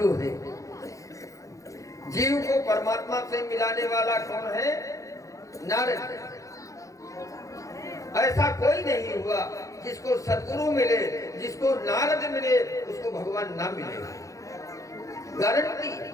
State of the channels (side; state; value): right; late; 0.16 ms